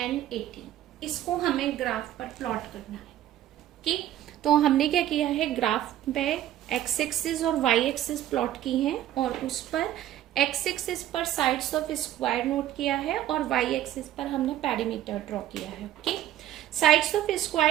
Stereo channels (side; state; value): left; quieter; 12.6 dB